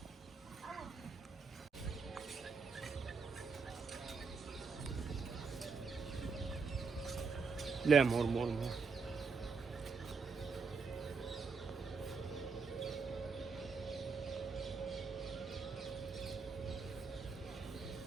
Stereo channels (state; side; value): quieter; left; 4.9 dB